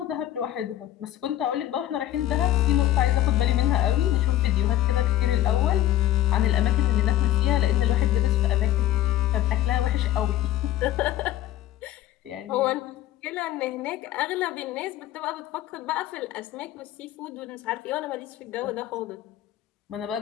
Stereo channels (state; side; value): quieter; right; 13.3 dB